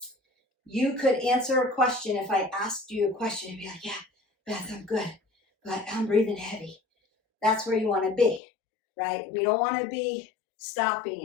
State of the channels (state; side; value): drops out; right; at 8.4 s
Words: You could answer a question if I asked you a question and be like, yeah, Beth, I'm good, but I'm breathing heavy. That's where you want to be, right? We don't want to be